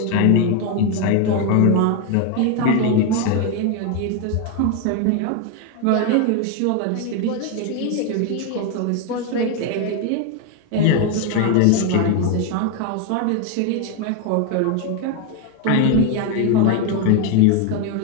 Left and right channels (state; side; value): different; both; correlation 0.01